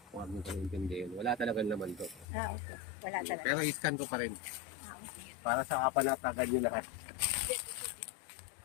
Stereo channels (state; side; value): drops out; right; at 2.2 s